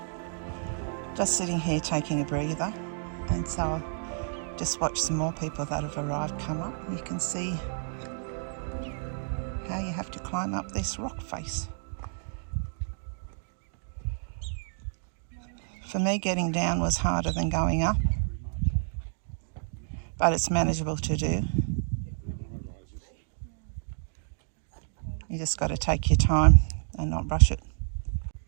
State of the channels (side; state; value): left; silent; digital silence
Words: Just sitting here taking a breather, and so I'll just watch some more people that have arrived come up. You can see how you have to climb up this rock face. For me, getting down was harder than going up, but it's manageable to do. You just got to take your time and not rush it.